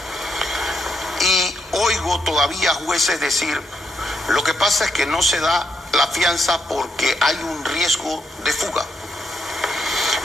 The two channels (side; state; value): both; normal; correlation 0.79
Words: Y oigo todavía jueces decir, lo que pasa es que no se da la fianza porque hay un riesgo de fuga.